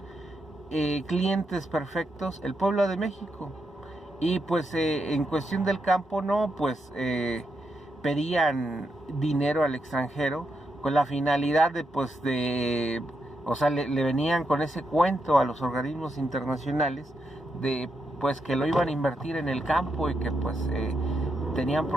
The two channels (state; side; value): normal; both; correlation 0.83